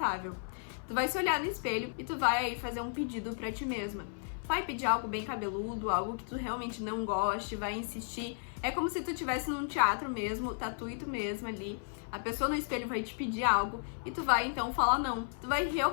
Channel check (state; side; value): silent; right; 55 dB below the other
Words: Tu vai se olhar no espelho e tu vai aí fazer um pedido pra ti mesma. Vai pedir algo bem cabeludo, algo que tu realmente não goste, vai insistir. É como se tu estivesse num teatro mesmo, tá tu e tu mesma ali. A pessoa no espelho vai te pedir algo e tu vai então falar não. Tu vai